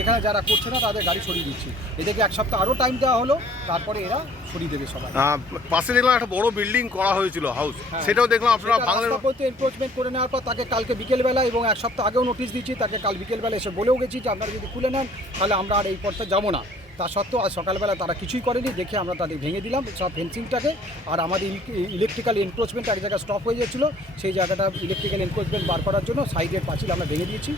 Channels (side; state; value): both; normal; correlation 0.56